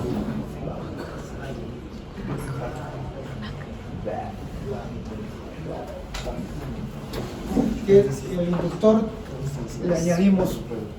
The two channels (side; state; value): both; identical; correlation 1.00